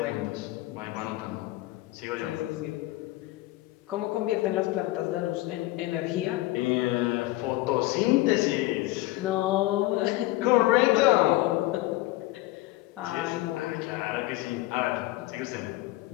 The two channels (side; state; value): right; quieter; 18.4 dB